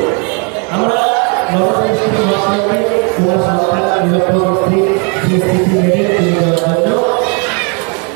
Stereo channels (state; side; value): quieter; left; 36.1 dB